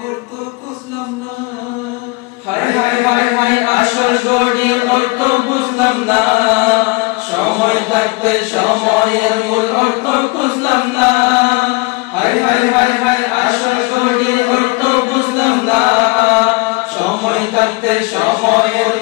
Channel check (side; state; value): right; quieter; 26.4 dB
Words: অর্থ বুঝলাম না। হায় হায় হায় হায় আসল ঘড়ির অর্থ বুঝলাম না, সময় থাকতে সময়ের মূল অর্থ বুঝলাম না। হায় হায় হায় হায় আসল ঘড়ির অর্থ বুঝলাম না, সময় থাকতে সময়ের